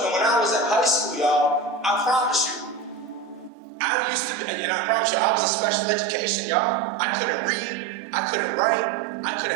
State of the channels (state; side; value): drops out; left; at 3.5 s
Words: and when I was in high school, y'all, I promise you, I used to be, and I promise you, I was in special education, y'all. I couldn't read, I couldn't write, I